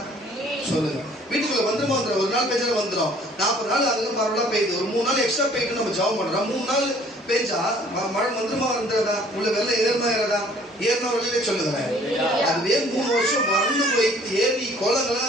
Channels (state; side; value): normal; both; correlation 0.56